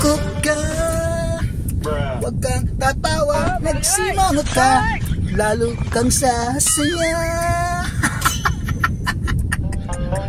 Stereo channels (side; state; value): both; identical; correlation 1.00